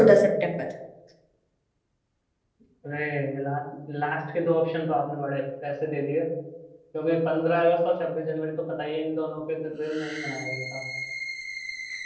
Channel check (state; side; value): identical; both; correlation 1.00